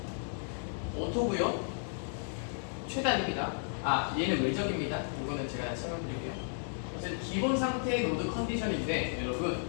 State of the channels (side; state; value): right; silent; digital silence